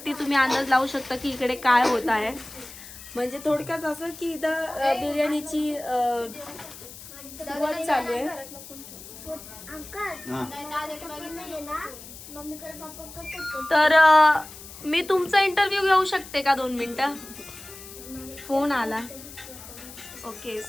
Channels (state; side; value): noise; left; hiss, 15 dB below the sound